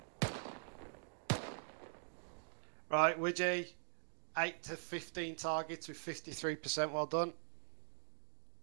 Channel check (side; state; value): left; silent; digital silence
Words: Right, Widgie, 8 to 15 targets with 53%. Well done.